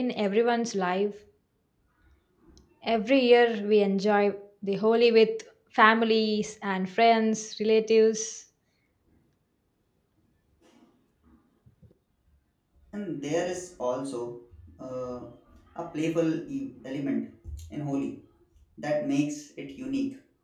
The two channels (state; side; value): identical; both; correlation 1.00